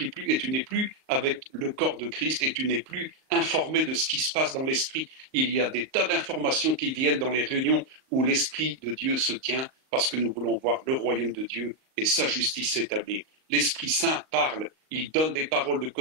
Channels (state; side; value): late; left; 38 ms